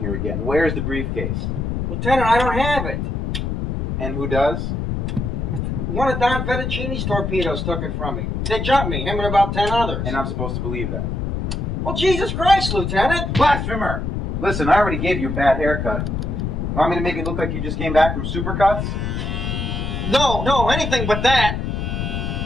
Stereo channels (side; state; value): left; noise; rumble, 2 dB below the sound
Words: again. Where's the briefcase? Lieutenant, I don't have it. And who does? One of Don Fettuccine's torpedoes took it from me. They jumped me, him and about 10 others. And I'm supposed to believe that. Well, Jesus Christ, Lieutenant! Blasphemer! Listen, I already gave you a bad haircut. Want me to make it look like you just came back from Supercuts? No, anything but that.